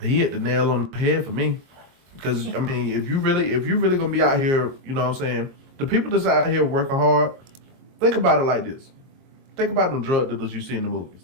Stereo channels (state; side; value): late; left; 22 ms